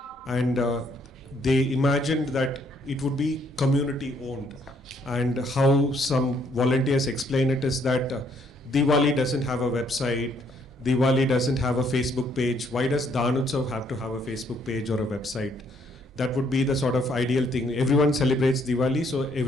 and they imagined that it would be community owned. And how some volunteers explain it is that Diwali doesn't have a website, Diwali doesn't have a Facebook page. Why does Danutsav have to have a Facebook page or a website? That would be the sort of ideal thing. Everyone celebrates Diwali, so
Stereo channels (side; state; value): both; normal; correlation 0.68